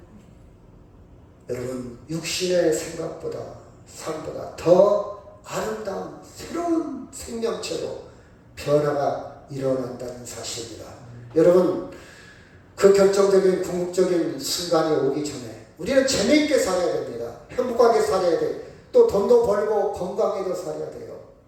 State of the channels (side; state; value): both; identical; correlation 1.00